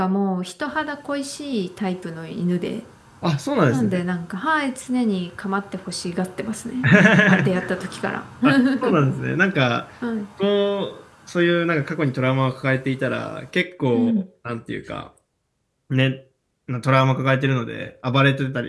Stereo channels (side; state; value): both; identical; correlation 1.00